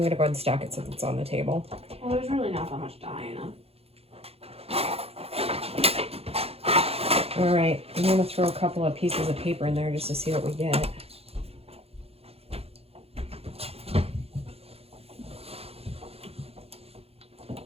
going to go ahead and stack it since it's on the table. Well, there's really not that much dye in them. All right, I'm going to throw a couple of pieces of paper in there just to see what we get.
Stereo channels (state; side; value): late; left; 0.29 ms